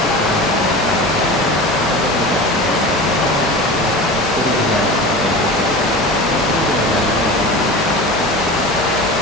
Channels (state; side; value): normal; both; correlation 0.32